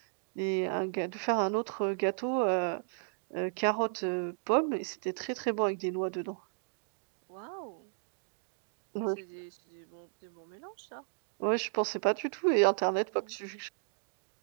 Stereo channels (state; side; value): silent; left; digital silence